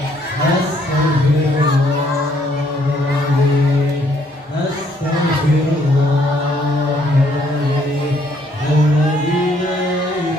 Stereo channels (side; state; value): both; normal; correlation 0.67